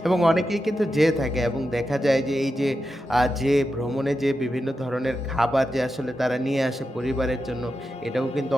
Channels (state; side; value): normal; both; correlation 0.89